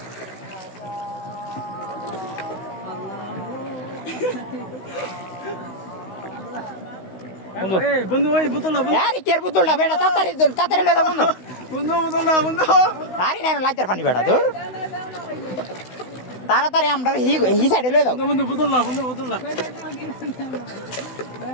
বন্ধু ওই বোতল আরে কের বোতলটা বেটা তাড়াতাড়ি লয়ে যা বন্ধু বন্ধু বোতল না বন্ধু আরে না লাইটার পানি বেটা তোর তাড়াতাড়ি আমরা হি সাইডে লয়ে যাও বন্ধু বোতল না বন্ধু বোতল না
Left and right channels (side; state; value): right; late; 16 ms